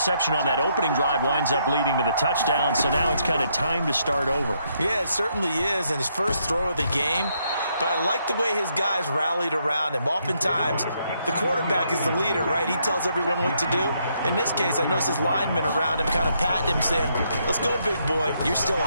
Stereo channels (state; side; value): inverted; both; correlation -0.75